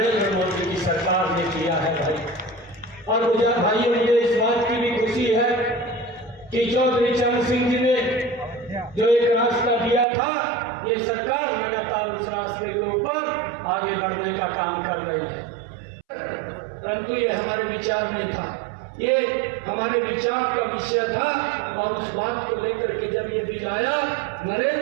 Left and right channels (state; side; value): drops out; left; at 10.1 s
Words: मोदी की सरकार ने किया है भाई। और मुझे भाइयों, मुझे इस बात की भी खुशी है कि चौधरी चरण सिंह जी ने जो एक रास्ता दिया था, ये सरकार लगातार उस रास्ते के ऊपर आगे बढ़ने का काम कर रही है। परंतु ये हमारे विचार में था, ये हमारे विचार का विषय था। और उस बात को लेकर के जब ये बिल आया,